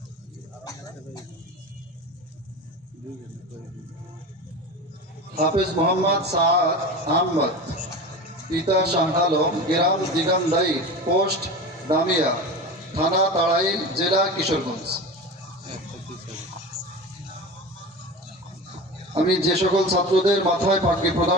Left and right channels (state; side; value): normal; both; correlation 0.29